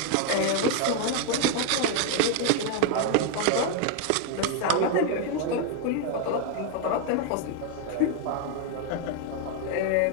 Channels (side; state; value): both; different; correlation 0.01